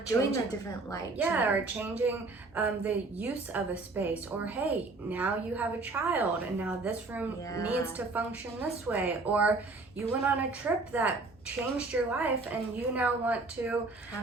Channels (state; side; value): quieter; left; 3.5 dB